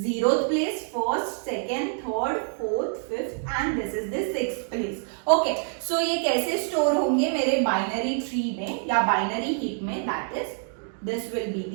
place, first, second, third, fourth, fifth and this is the sixth place. Okay, so ये कैसे store होंगे मेरे बाइनरी ट्री में या बाइनरी हीप में, that is this will be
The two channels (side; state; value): left; silent; 55 dB below the other